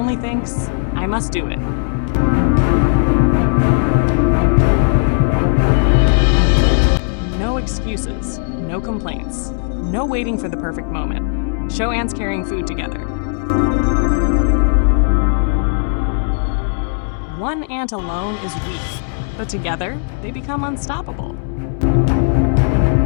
thinks, "I must do it." No excuses, no complaints, no waiting for the perfect moment. Show ants carrying food together. One ant alone is weak, but together they become unstoppable.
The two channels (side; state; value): right; silent; 64 dB below the other